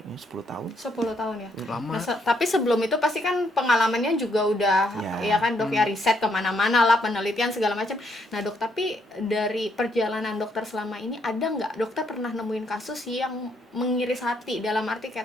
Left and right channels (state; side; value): normal; both; correlation 0.73